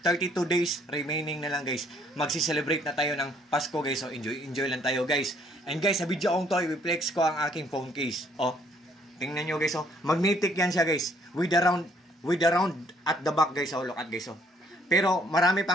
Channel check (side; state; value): both; normal; correlation 0.64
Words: 32 days remaining na lang guys. Magsi-celebrate na tayo ng Pasko guys. So enjoy lang tayo guys. And guys, sa video kong to, i-flex ko ang aking phone case. Oh, tingnan nyo guys. Oh, magnetic yan siya guys. With the round at the back guys. Oh, look at guys. Oh. Pero marami